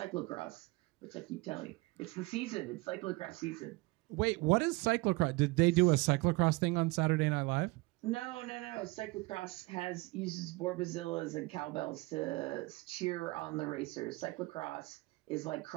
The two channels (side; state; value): left; quieter; 23.4 dB